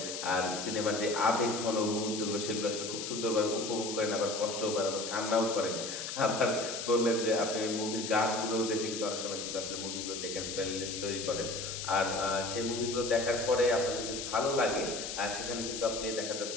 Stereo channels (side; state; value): left; noise; hiss, 6 dB below the sound